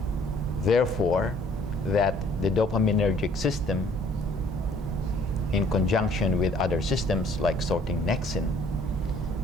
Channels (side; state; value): both; normal; correlation 0.58